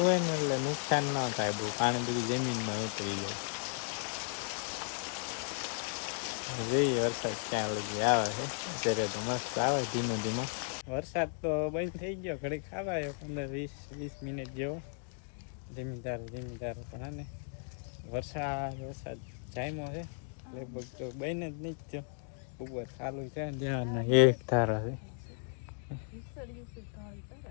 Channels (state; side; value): silent; right; 54 dB below the other